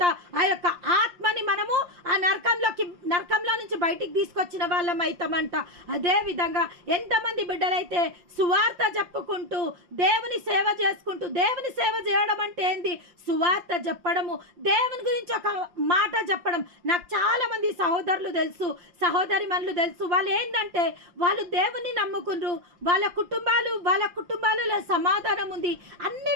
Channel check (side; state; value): left; late; 5.7 ms